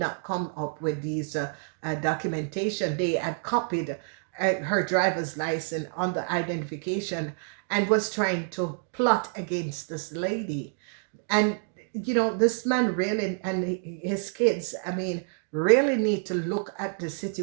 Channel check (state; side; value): silent; left; 59 dB below the other